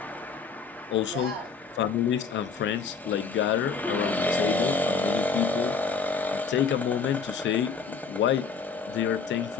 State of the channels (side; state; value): right; quieter; 5.3 dB